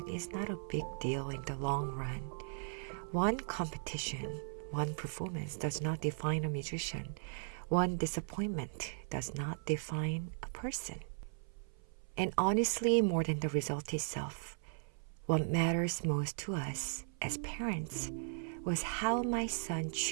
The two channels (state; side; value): silent; left; 53 dB below the other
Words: is not a big deal in the long run. One competition, one performance does not define a musician. One disappointment does not define a person. And honestly, more than the result itself, what matters most to us as parents was how my son